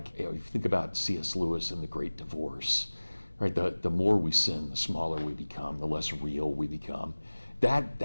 if you think about C.S. Lewis in The Great Divorce, right? The more we sin, the smaller we become, the less real we become.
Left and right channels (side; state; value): both; inverted; correlation -1.00